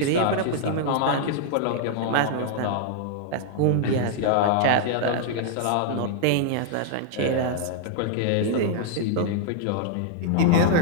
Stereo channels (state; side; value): different; both; correlation -0.01